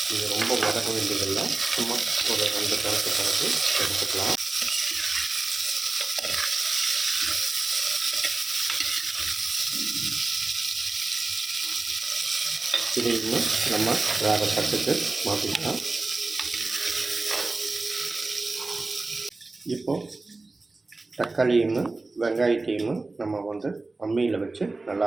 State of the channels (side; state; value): left; quieter; 3.4 dB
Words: இது ரொம்ப வதக்க வேண்டியதில்லை, சும்மா ஒரு 2 கணக்கு எடுத்துக்கலாம். இது இன்னும் நம்ம வேறு தட்டுக்கு மாற்றிக்கலாம். இப்போது தக்காளியும் வெங்காயத்தையும் நம்ம வந்து அம்மியில் வச்சு